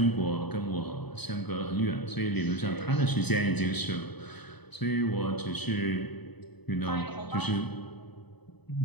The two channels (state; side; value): late; right; 0.99 ms